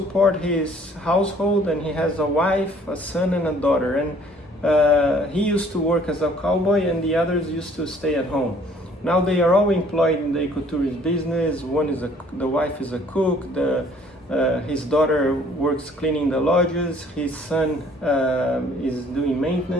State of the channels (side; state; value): both; normal; correlation 0.58